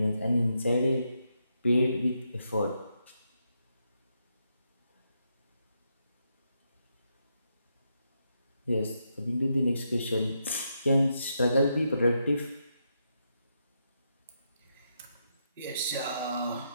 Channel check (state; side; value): inverted; both; correlation -0.81